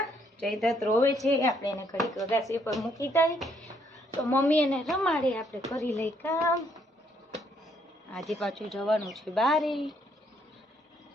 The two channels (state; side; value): normal; both; correlation 0.70